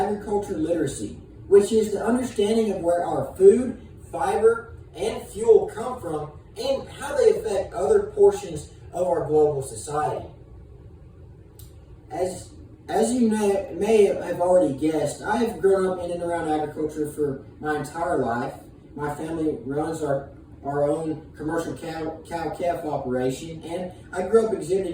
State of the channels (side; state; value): both; identical; correlation 1.00